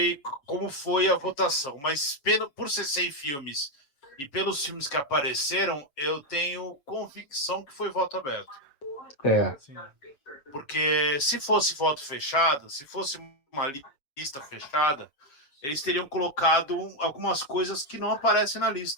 como foi a votação, mas por ser 100 filmes e pelos filmes que apareceram, eu tenho convicção que foi voto aberto. É. Sim. Porque se fosse voto fechado, se fosse uma lista fechada, eles teriam colocado algumas coisas que não aparecem na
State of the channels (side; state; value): right; late; 7.2 ms